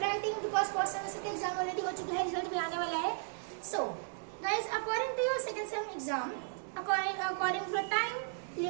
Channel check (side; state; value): left; silent; digital silence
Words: because first semester के exam already हो चुका है, result भी आने वाला है. So guys, according to your second sem exam, according to the time